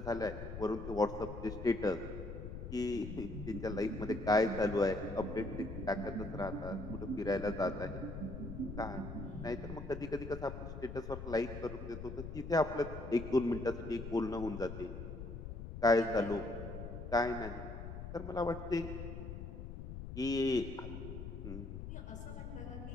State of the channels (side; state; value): left; noise; rumble, 8 dB below the sound